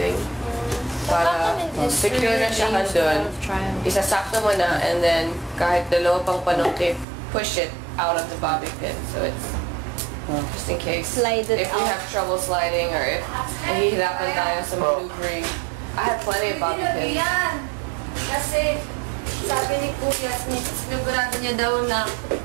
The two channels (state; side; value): drops out; left; at 7.1 s